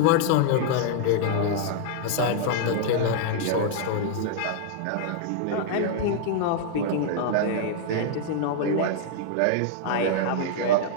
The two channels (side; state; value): both; different; correlation -0.01